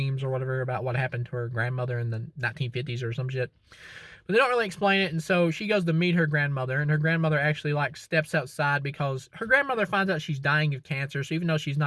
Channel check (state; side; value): identical; both; correlation 1.00